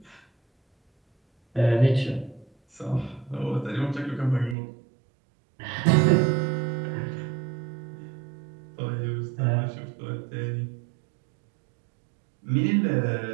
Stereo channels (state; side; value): drops out; left; at 4.5 s